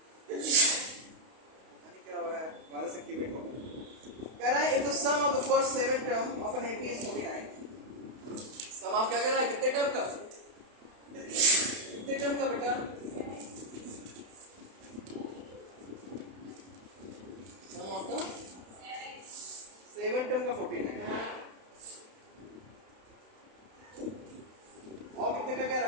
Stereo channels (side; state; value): left; late; 32 ms